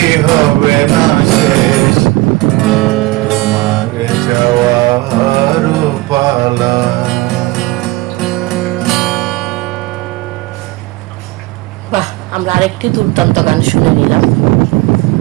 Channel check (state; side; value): quieter; left; 20.4 dB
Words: হবে না শেষ তোমারে চাওয়ার পালা। বাহ, আমরা আরেকটি দুর্দান্ত গান শুনে নিলাম।